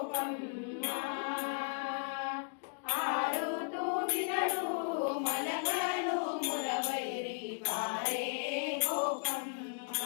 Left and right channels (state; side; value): silent; right; digital silence